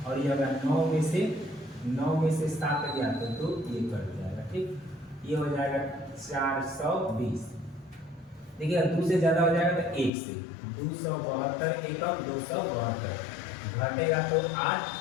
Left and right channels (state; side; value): drops out; right; at 10.1 s